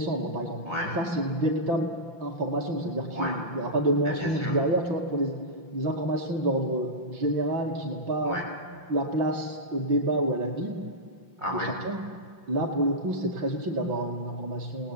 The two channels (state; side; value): late; left; 5.8 ms